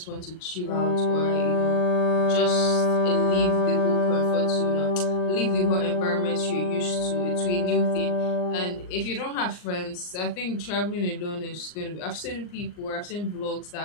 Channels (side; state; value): right; late; 39 ms